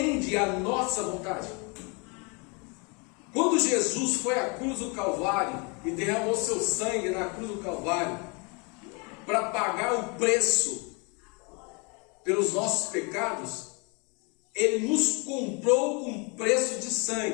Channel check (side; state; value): right; quieter; 31.8 dB